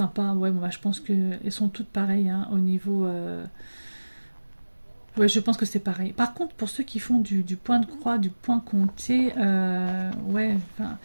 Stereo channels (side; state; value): both; inverted; correlation -1.00